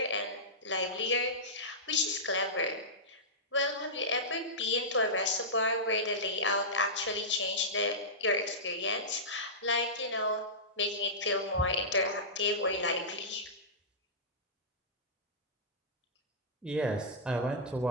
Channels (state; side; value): normal; both; correlation -0.15